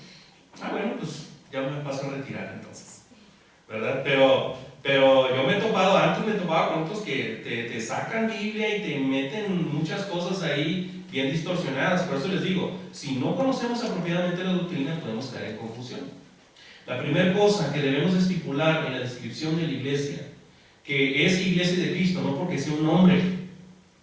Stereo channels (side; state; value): both; identical; correlation 1.00